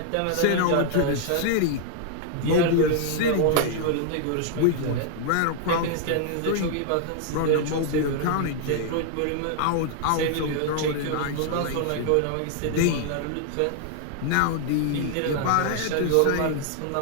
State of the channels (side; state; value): both; different; correlation 0.00